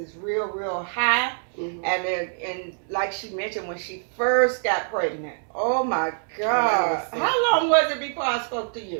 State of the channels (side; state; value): left; silent; 62 dB below the other